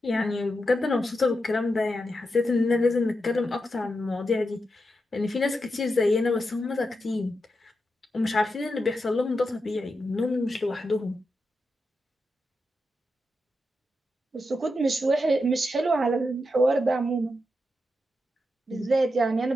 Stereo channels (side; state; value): both; normal; correlation 0.87